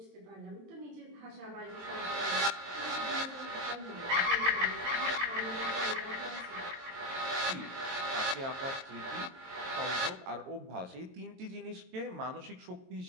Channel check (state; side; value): late; left; 22 ms